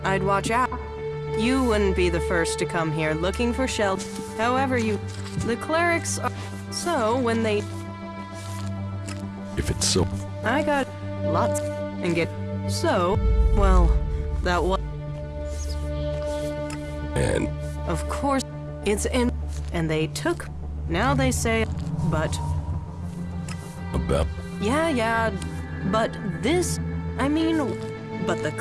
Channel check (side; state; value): both; identical; correlation 1.00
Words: I'd watch out. You wouldn't be the first to come here looking for shelter. However, the clerics are... So, when they... If it's so... I got lots and get... So, well, that was... And... Of course, it's in... And they took... Now they say... But... About... Yeah, but this... I mean... But